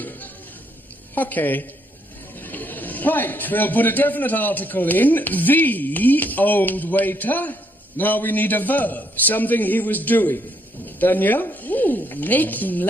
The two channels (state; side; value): normal; both; correlation 0.72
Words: Okay. Right, we'll put a definite article in. The old waiter. Now we need a verb, something he was doing. Danielle? Ooh, making